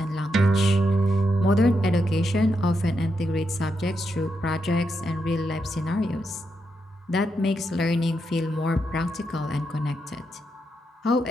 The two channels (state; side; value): normal; both; correlation 0.82